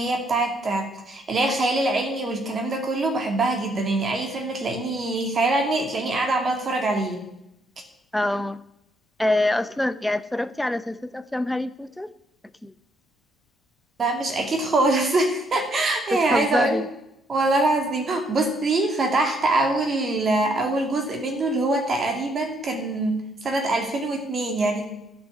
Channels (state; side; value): normal; both; correlation 0.71